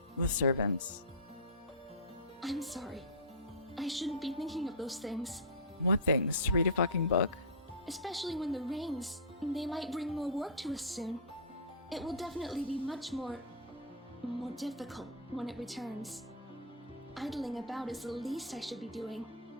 with servants. I'm sorry. I shouldn't be thinking of those things. What things? To read a fucking book? Especially when the rains, they might bring more work to us soon. It will definitely be much more difficult when it returns. Idling about is the least I should be doing.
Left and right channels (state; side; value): normal; both; correlation -0.13